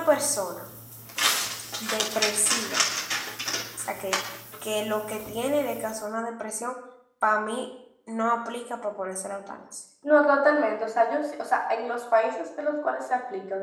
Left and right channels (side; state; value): both; identical; correlation 1.00